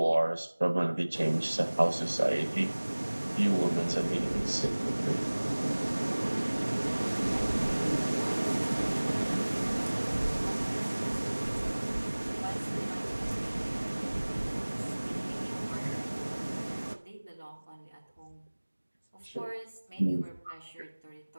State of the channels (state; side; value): inverted; both; correlation -1.00